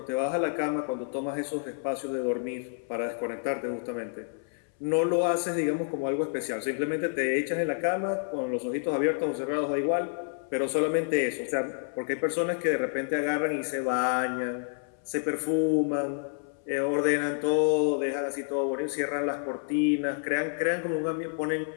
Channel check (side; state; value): right; silent; 59 dB below the other